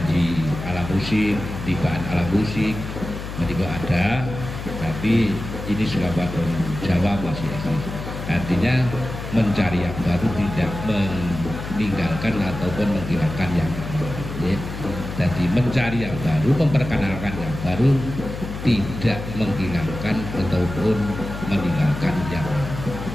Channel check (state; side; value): noise; left; hum, 8 dB below the sound